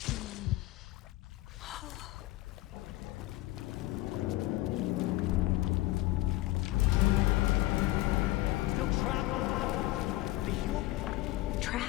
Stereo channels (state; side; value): quieter; right; 17.8 dB